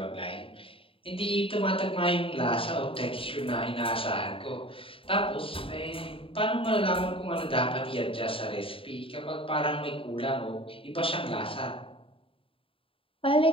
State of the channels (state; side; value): late; right; 0.26 ms